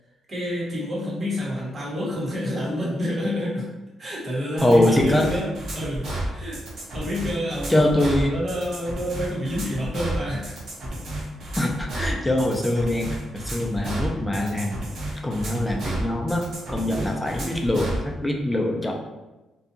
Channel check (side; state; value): both; normal; correlation 0.86